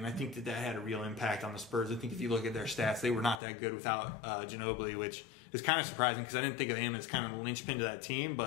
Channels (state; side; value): drops out; right; at 3.4 s